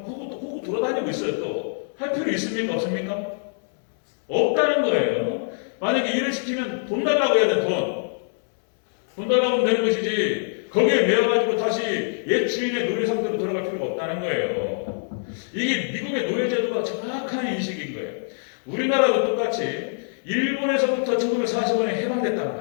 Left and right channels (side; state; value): right; silent; digital silence